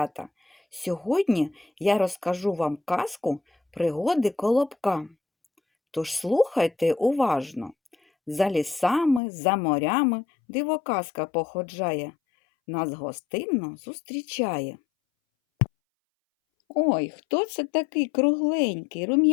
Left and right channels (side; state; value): right; drops out; at 9.2 s